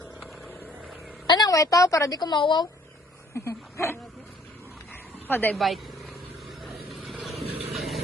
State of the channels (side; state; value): both; normal; correlation 0.58